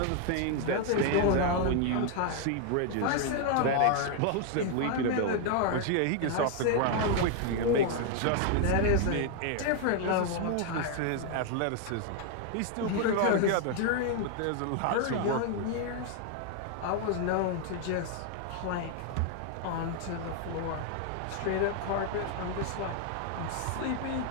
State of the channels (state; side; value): different; both; correlation 0.00